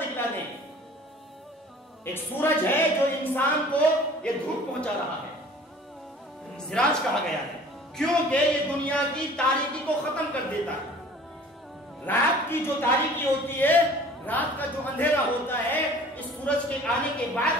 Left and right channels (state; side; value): normal; both; correlation 0.48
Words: دکھلا دیں۔ ایک سورج ہے جو انسان کو یہ دھوپ پہنچا رہا ہے، سراج کہا گیا ہے، کیونکہ یہ دنیا کی تاریکی کو ختم کر دیتا ہے. رات کی جو تاریکی ہوتی ہے، رات کا جو اندھیرا ہوتا ہے، اس سورج کے آنے کے